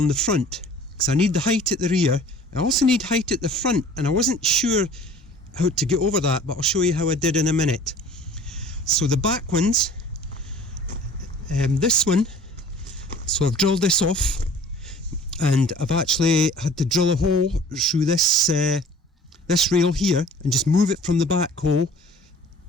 the front because I need the height at the rear. I also need height at the front, and I wasn't sure how to get over that, but I'll show you how I did in a minute. So the back ones, this one, so I've drilled this off, and I've actually had to drill a hole through this this rail here and just move it from the back hole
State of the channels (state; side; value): normal; both; correlation 0.47